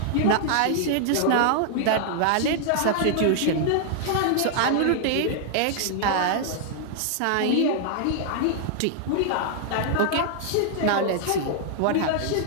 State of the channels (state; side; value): different; both; correlation -0.01